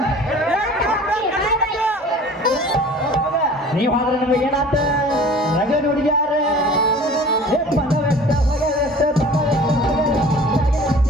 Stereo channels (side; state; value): both; normal; correlation 0.44